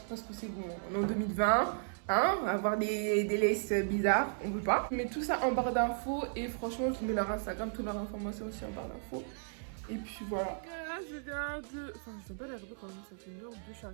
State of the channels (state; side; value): silent; left; 54 dB below the other